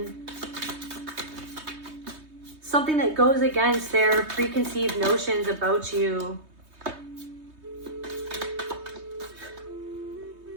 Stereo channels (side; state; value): left; late; 3.2 ms